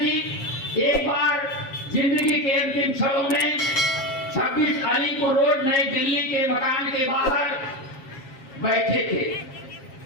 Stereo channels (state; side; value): late; right; 7.4 ms